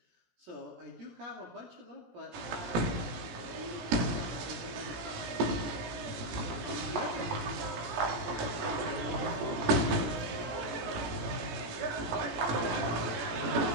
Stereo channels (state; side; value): late; left; 18 ms